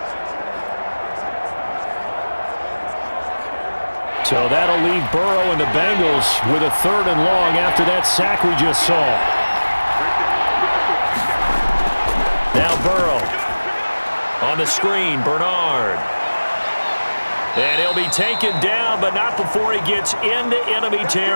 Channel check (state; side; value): inverted; both; correlation -1.00